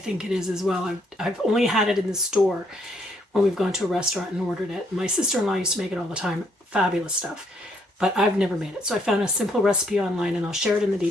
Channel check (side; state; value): both; normal; correlation 0.69